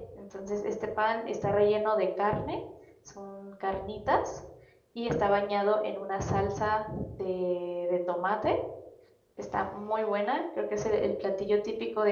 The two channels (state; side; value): identical; both; correlation 1.00